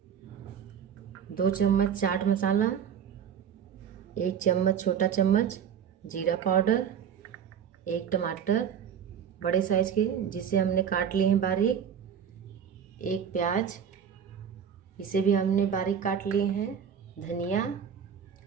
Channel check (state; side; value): quieter; left; 8.0 dB